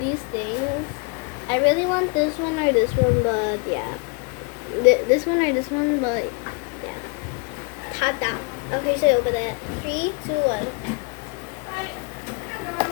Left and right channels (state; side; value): quieter; right; 34.6 dB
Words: things. I really want this one or this one, but yeah. This one or this one, but yeah. Tada. Okay, so open it. 3, 2, 1.